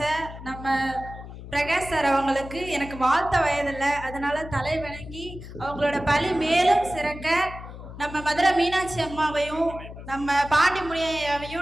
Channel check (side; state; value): left; noise; hum, 13 dB below the sound